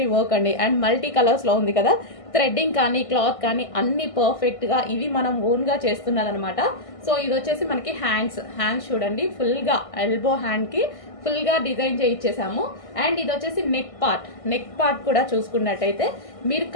వర్క్ అండి అండ్ మల్టీ కలర్స్ లో ఉంది కదా. థ్రెడ్డింగ్ కానీ క్లాత్ కానీ అన్ని పర్ఫెక్ట్ గా ఇది మనం ఓన్ గా చేస్తున్నది అనమాట. సో ఇది వచ్చేసి మనకి హ్యాండ్స్ చూడండి, ఫుల్ గా ఎల్బో హ్యాండ్ కి ఫుల్ గా డిజైన్ చేయించేసాము. అండ్ ఇది వచ్చేసి నెక్ పార్ట్ కూడా చూసుకున్నట్టయితే మీరు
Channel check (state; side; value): late; right; 1.6 ms